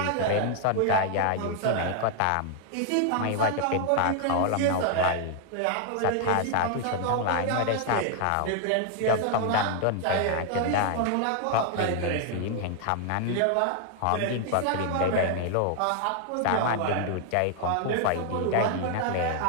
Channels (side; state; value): both; different; correlation 0.00